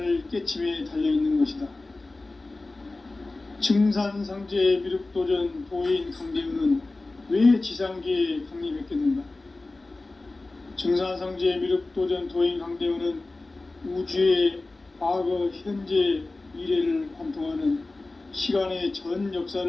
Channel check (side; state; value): right; quieter; 3.2 dB